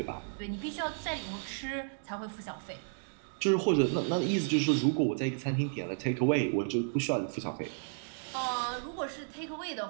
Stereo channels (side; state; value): left; silent; digital silence